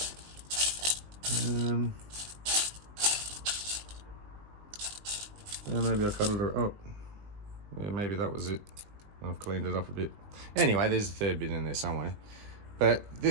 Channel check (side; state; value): left; late; 19 ms